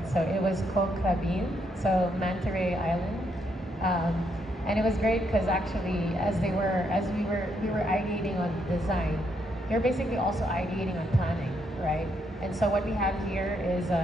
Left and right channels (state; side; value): normal; both; correlation 0.76